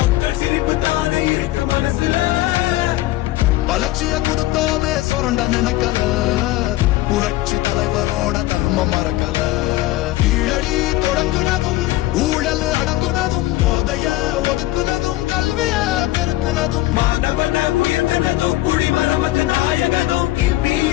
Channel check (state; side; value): quieter; right; 17.1 dB